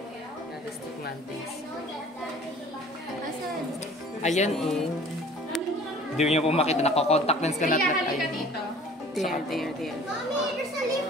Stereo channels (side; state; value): both; normal; correlation 0.49